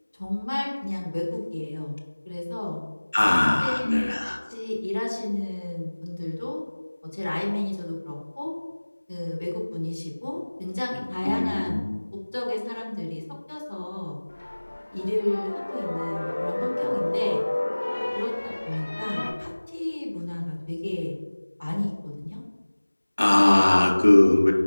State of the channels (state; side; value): inverted; both; correlation -1.00